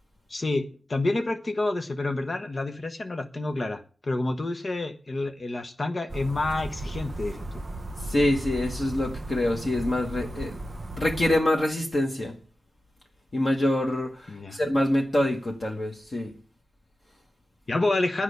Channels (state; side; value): normal; both; correlation 0.93